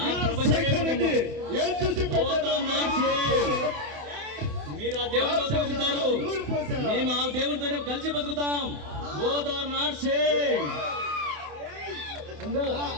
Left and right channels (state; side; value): late; left; 28 ms